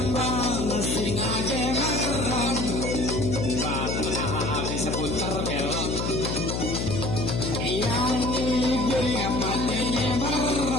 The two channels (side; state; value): left; noise; hum, 1 dB below the sound